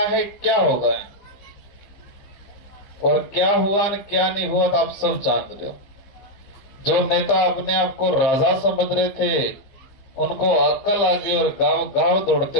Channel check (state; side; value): late; right; 15 ms